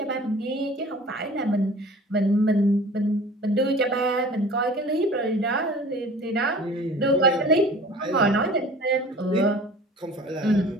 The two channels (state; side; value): normal; both; correlation 0.44